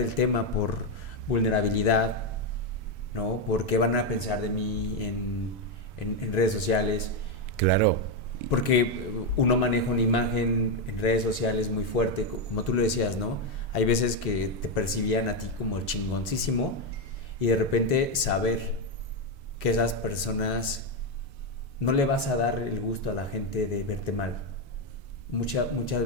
tema por vulnerabilidad, ¿no? ¿Por qué van a pensar de mí en redes sociales? Claro. Porque uno maneja una imagen en redes sociales muy fuerte, como tú lo decías, ¿no? Hay veces que te percibían a ti como el chingoncísimo y de repente saber que esas personas no le vas a dar el gusto a la gente de verte mal. Muchas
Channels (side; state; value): both; normal; correlation 0.05